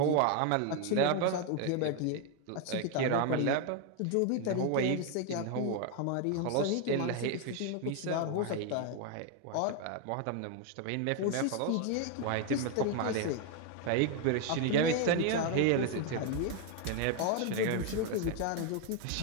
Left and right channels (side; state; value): both; different; correlation 0.01